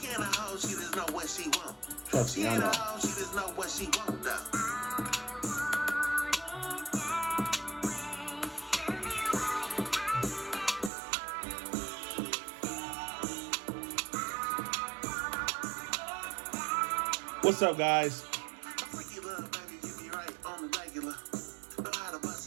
ain't a hoe, she just know what she want. Trust me, I know. She just know what she want, though. What's up, guys? Freaky love, baby, get me right on the regular. Know how to bust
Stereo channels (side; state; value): left; drops out; at 10.9 s